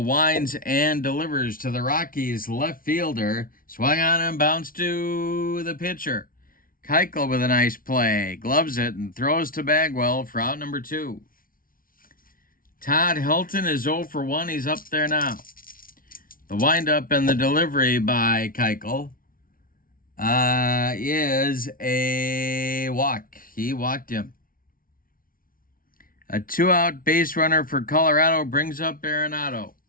winds and delivers to the Rockies left fielder. Swung on and bounced to the pitcher. Keuchel with a nice play. Gloves it and throws to Bagwell for out number 2. Todd Helton is 0 for 1. He's up there now. The windup and the delivery by Keuchel is a walk. He walked him. A 2-out base runner for Colorado brings up Arenado.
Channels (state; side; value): late; right; 0.41 ms